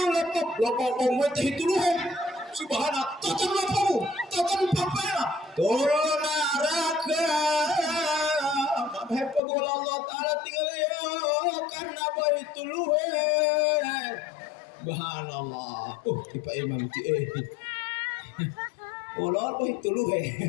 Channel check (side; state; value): right; drops out; at 9.4 s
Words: lepabok mau itu luhe. Subhanallah, totan lepabok, totan papaya, tolong naraka. Hepa bola Allah Taala tinggal ya karena itu luhe. Subhanallah. Tipe Imam ti Ulol itu luhe.